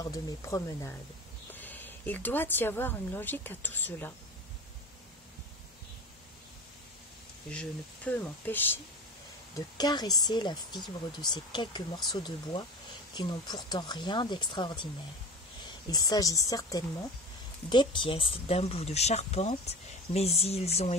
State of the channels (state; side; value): normal; both; correlation 0.31